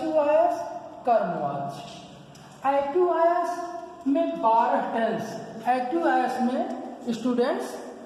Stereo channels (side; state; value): both; identical; correlation 1.00